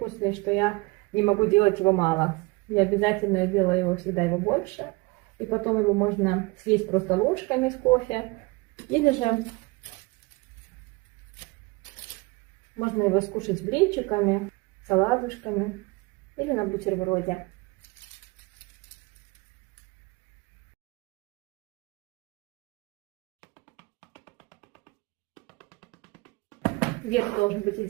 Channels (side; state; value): left; quieter; 25.2 dB